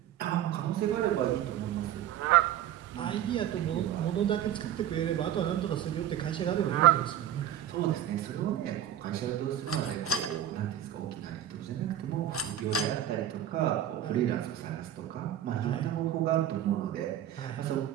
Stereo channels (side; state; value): left; quieter; 11.0 dB